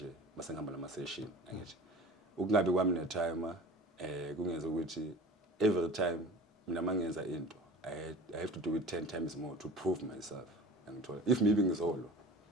masengihamba nama-session angithi ukungabe kwami ne-time kungenza ukuthi every time mina mangenza into I have to do it 10 times more to prove myself ngithola if maybe ngizolwa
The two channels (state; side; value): normal; both; correlation 0.39